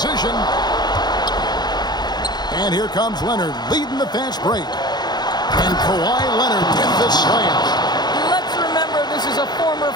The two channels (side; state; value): right; late; 0.20 ms